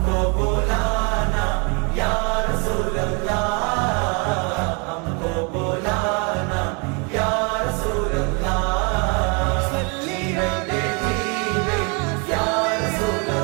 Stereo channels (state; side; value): quieter; left; 33.4 dB